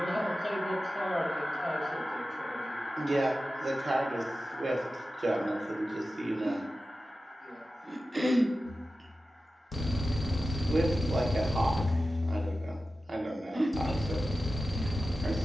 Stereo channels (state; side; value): normal; both; correlation 0.94